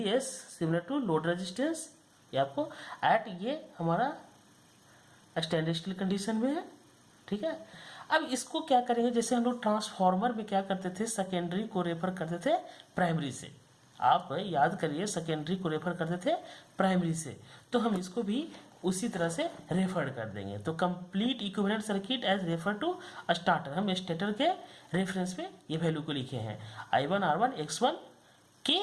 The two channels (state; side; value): identical; both; correlation 1.00